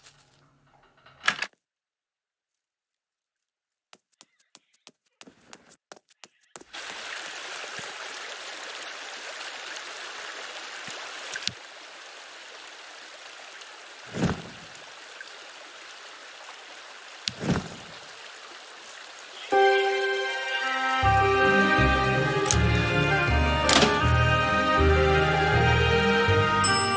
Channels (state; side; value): identical; both; correlation 1.00